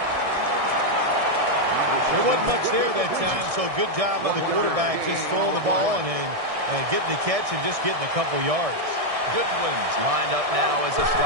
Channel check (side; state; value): left; late; 1.6 ms